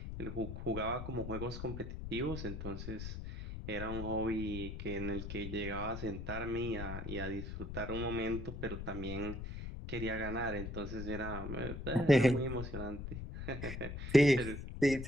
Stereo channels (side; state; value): left; noise; rumble, 7 dB below the sound